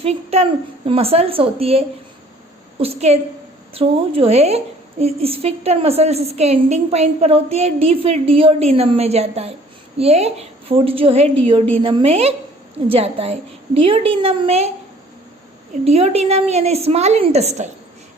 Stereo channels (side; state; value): both; normal; correlation 0.54